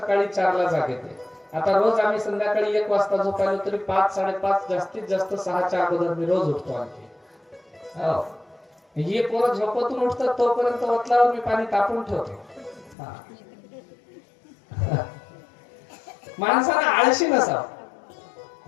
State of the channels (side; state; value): right; drops out; at 13.0 s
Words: 4ला जाग येते. आता रोज आम्ही संध्याकाळी 1 वाजता झोपायलो तरी 5-5:30 जास्तीत जास्त 6च्या अगोदर मी रोज उठतो. आणखी हो, हे पोरं झोपतून उठतात तोपर्यंत वतलावर मी पाणी तापून ठेवतो. माणसाला आळशी नसावं,